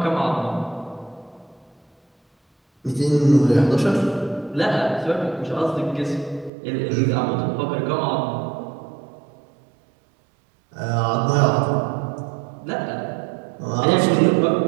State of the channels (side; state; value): left; drops out; at 6.5 s